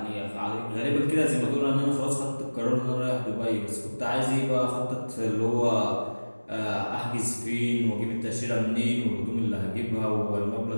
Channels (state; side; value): inverted; both; correlation -1.00